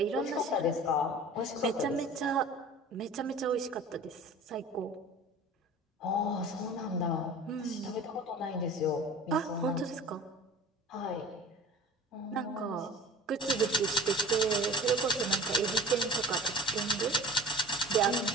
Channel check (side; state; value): both; normal; correlation 0.41